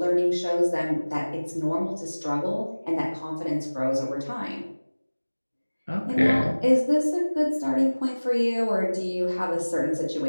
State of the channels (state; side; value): inverted; both; correlation -1.00